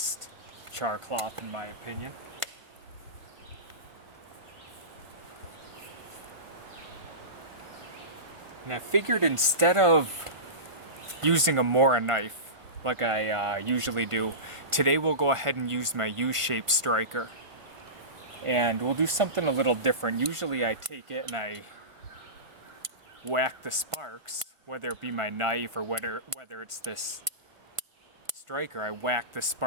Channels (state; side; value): late; left; 1.5 ms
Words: char cloth in my opinion. And I figured instead of using a Mora knife, like I usually do, today we'll go ahead and use my U-shaped striker. And we'll do something a little different. Usually I take it and I whack the sparks, whether it be my knife or whether it's this striker, I whack the